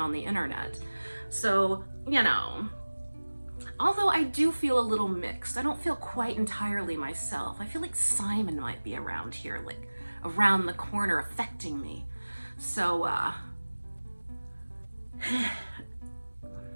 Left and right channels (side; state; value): both; inverted; correlation -1.00